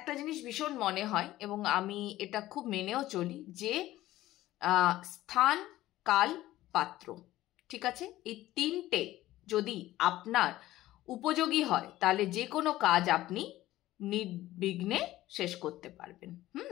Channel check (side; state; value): right; quieter; 15.6 dB